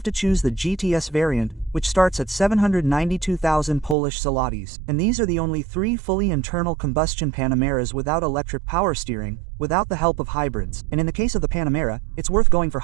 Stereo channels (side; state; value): left; drops out; at 4.0 s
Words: to choose the GTS variant, which starts at 792,000 Polish zlotys. And these are the only 3 fully internal combustion Panameras without electric power steering, without the help of hybrids. And in the case of the Panamera, it's worth going for